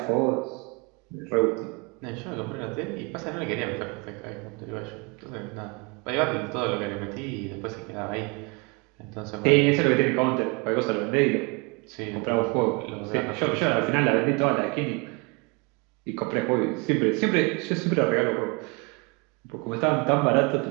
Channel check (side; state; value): left; quieter; 30.6 dB